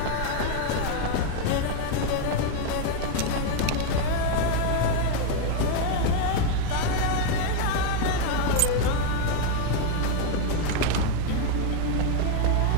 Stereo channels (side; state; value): both; different; correlation 0.01